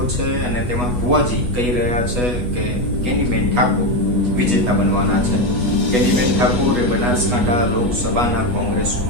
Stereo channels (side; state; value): left; late; 8.2 ms